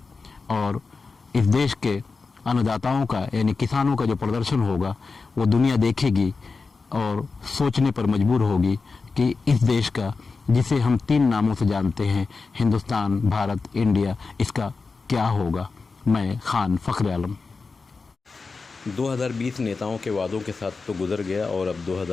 और इस देश के अन्नदाताओं का यानी किसानों का जो प्रदर्शन होगा वो दुनिया देखेगी और सोचने पर मजबूर होगी कि इस देश का, जिसे हम 3 नामों से जानते हैं, हिंदुस्तान, भारत, इंडिया, इसका क्या होगा। मैं खान फखर आलम। 2020 नेताओं के वादों के साथ तो गुजर गया और अब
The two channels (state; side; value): quieter; right; 4.4 dB